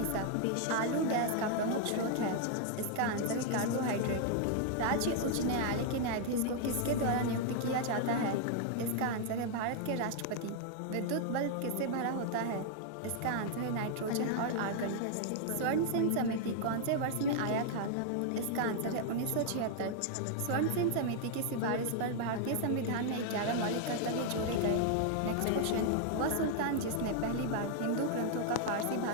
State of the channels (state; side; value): different; both; correlation 0.00